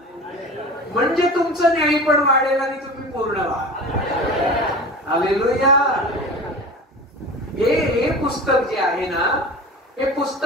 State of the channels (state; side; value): normal; both; correlation 0.34